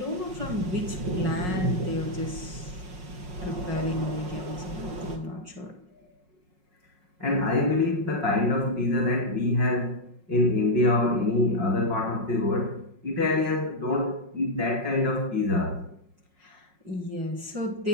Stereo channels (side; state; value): left; late; 5.5 ms